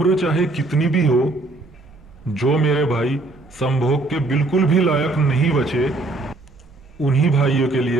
चाहे कितनी भी हो, जो मेरे भाई संभोग के बिल्कुल भी लायक नहीं बचे, उन्हीं भाइयों के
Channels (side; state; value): left; quieter; 3.1 dB